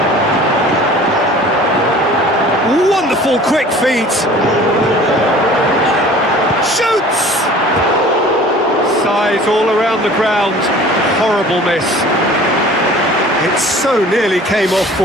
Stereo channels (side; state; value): both; normal; correlation 0.46